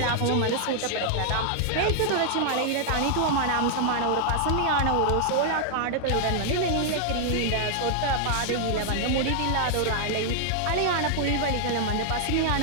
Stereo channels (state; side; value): different; both; correlation 0.00